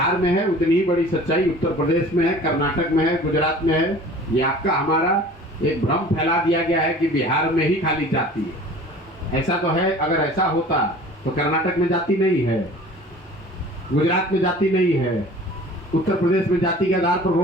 में है, उतनी ही बड़ी सच्चाई उत्तर प्रदेश में है, कर्नाटक में है, गुजरात में है। ये आपका हमारा एक भ्रम फैला दिया गया है कि बिहार में ही खाली जाति है। ऐसा तो है, अगर ऐसा होता तो कर्नाटक में जाति नहीं है, गुजरात में जाति नहीं है, उत्तर प्रदेश में जाति के आधार पर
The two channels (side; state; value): both; normal; correlation 0.45